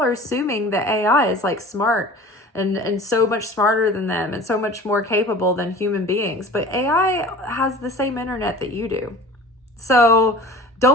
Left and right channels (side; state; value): both; normal; correlation 0.41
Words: assuming that AI is like smart and so much smarter than them and so much more capable than human beings. But AI has the same internet that you do. So